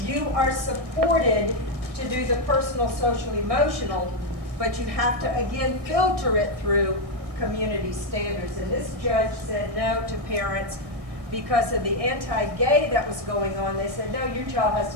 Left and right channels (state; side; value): late; left; 1.6 ms